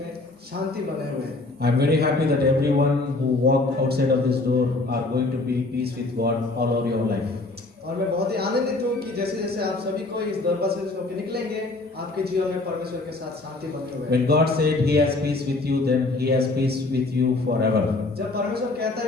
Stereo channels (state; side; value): quieter; right; 3.1 dB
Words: शांति बने हुए हैं। I am very happy that everyone who walk outside of this door are going to be peace with God all over your life. और मैं बहुत ही आनंदित हूँ कि जैसे जैसे आप सभी को इस दरवाजे से होकर निकलेंगे, आपके जीवन में परमेश्वर के साथ शांति बने हुए हैं। When God said He has peace with you, then He has peace with you forever. जब परमेश्वर कहता